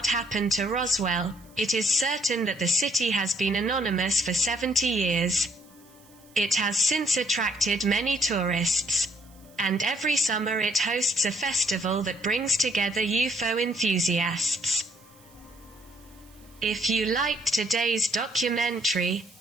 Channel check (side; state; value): right; noise; hiss, 28 dB below the sound